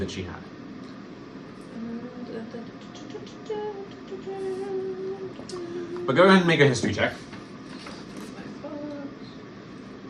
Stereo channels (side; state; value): both; identical; correlation 1.00